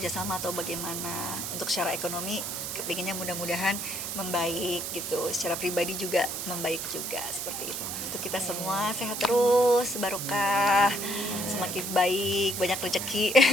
atau bagaimana. Untuk secara ekonomi kepinginnya mudah-mudahan membaik gitu, secara pribadi juga membaik juga, seperti itu. Untuk kita semua sehat terus, barokah, semakin baik, banyak rezeki,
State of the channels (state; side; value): noise; right; hiss, 4 dB below the sound